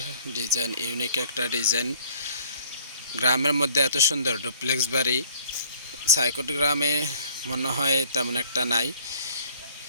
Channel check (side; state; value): both; inverted; correlation -0.57